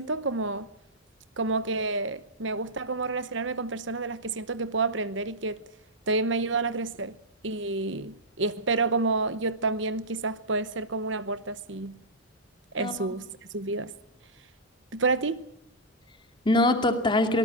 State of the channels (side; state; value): both; normal; correlation -0.10